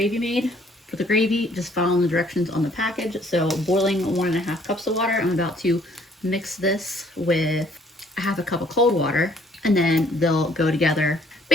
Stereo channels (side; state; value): both; normal; correlation 0.61